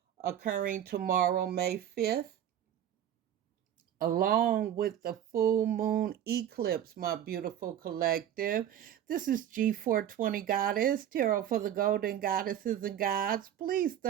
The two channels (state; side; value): quieter; left; 10.4 dB